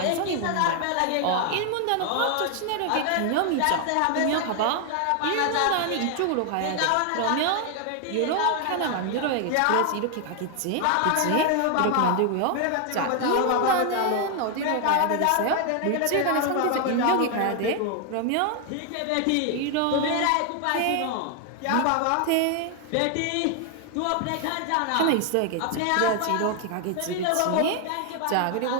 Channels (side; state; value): both; different; correlation 0.00